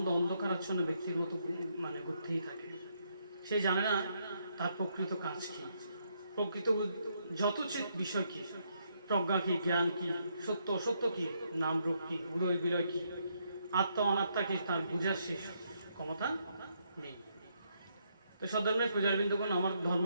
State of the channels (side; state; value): both; inverted; correlation -0.75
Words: অন্ধকারাচ্ছন্ন ব্যক্তির মতো মানে ঘুরতেই থাকে। সে জানে না তার প্রকৃত কাজ কি, প্রকৃত যথোচিত বিষয় কি, প্রজ্ঞা কি, জ্ঞান কি, সত্য অসত্য কি, নাম রূপ কি, উদয় বিলয় কি, আত্মা অনাত্মা কি, তার বুঝার শেষ ক্ষমতা নেই। তো সধর্মের পূজারবৃন্দগণ, আমার